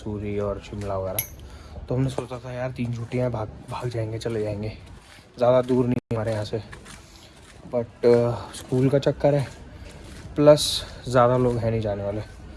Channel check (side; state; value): both; identical; correlation 1.00